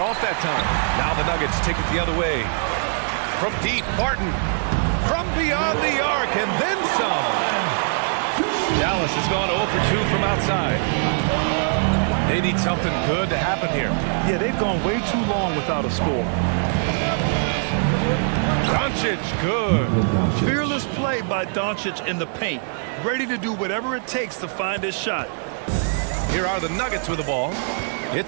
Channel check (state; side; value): silent; left; 64 dB below the other